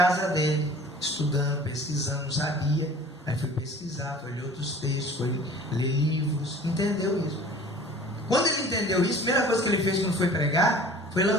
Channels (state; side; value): normal; both; correlation 0.46